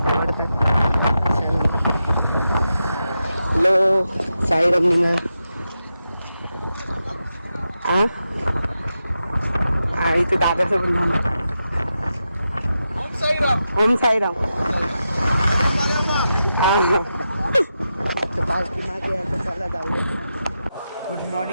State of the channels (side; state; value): both; inverted; correlation -0.88